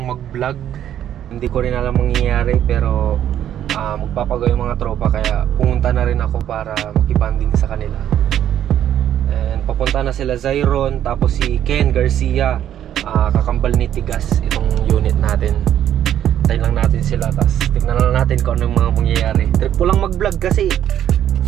mag-vlog. Hindi ko rin alam mangyayari pero magpapagawa yung mga tropa kaya pumunta na rin ako para makibanding sa kanila. And papunta na sila Zyron tapos si Ken Garcia, kakambal ni Tigas itong unit natin. Tayo lang natin sila tapos tignan lang natin kung ano yung mga mangyayari. Trip ko lang mag-vlog kasi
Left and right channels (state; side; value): quieter; left; 10.7 dB